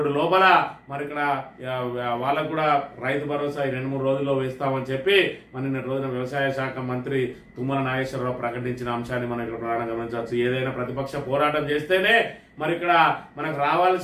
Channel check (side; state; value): both; identical; correlation 1.00